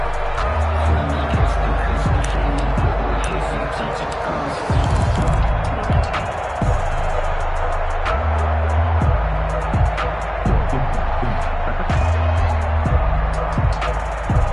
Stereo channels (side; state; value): both; identical; correlation 1.00